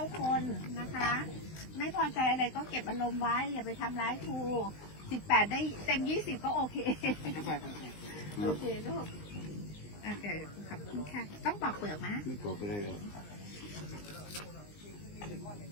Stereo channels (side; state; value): right; late; 19 ms